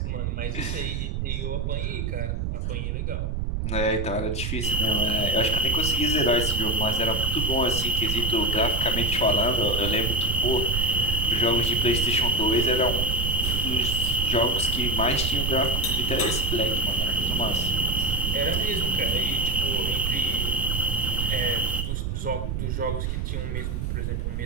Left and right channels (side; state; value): right; noise; rumble, 2 dB below the sound